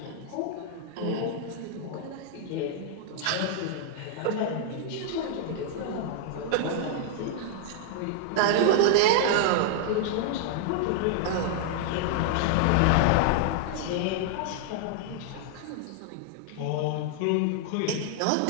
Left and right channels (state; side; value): different; both; correlation -0.01